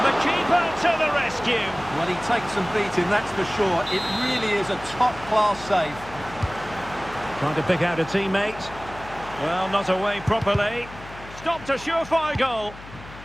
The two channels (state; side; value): noise; left; hum, 16 dB below the sound